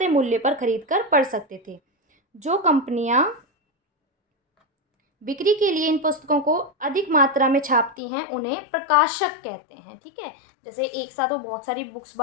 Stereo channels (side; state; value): right; drops out; at 8.0 s